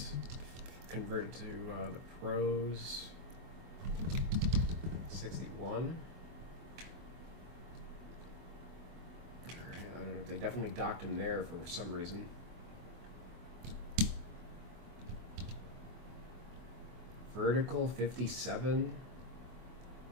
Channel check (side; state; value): left; late; 24 ms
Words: converted to the pros. 61. I don't know. They definitely docked him there for some reason. Vertical 57.